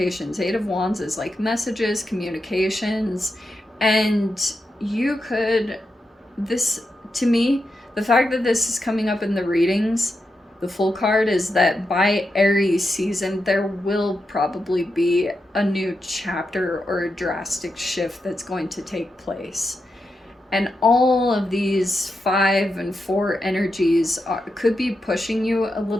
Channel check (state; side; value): normal; both; correlation 0.87